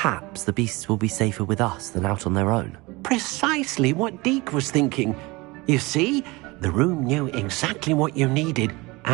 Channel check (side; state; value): left; quieter; 23.5 dB